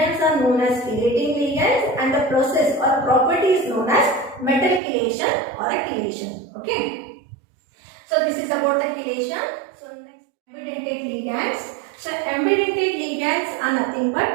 are known as chelating ligands, and the process or property is known as metal chelation or a chelation. Okay, so this is about the chelation. So next, ambidentate ligands. So ambidentate ligands are nothing but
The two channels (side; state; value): left; drops out; at 4.8 s